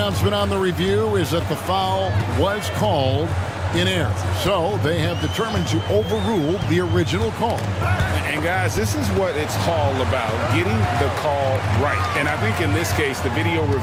on the review is that the foul was called in error. So they have determined to overrule the original call. And guys, this is what it's all about, getting the call right. And I think in this case, the video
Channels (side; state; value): both; identical; correlation 1.00